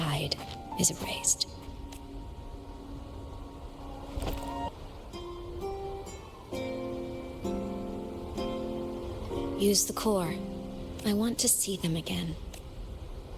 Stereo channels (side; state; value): both; identical; correlation 1.00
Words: is erased. Use the core. I want to see them again.